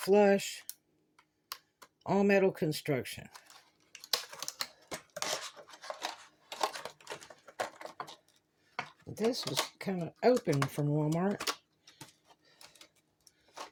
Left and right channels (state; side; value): identical; both; correlation 1.00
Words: All metal construction. This was kind of open from Walmart.